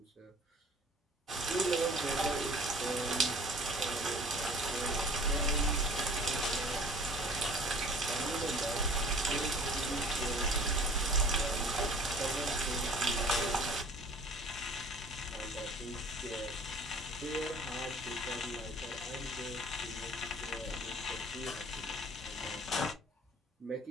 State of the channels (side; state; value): both; normal; correlation 0.48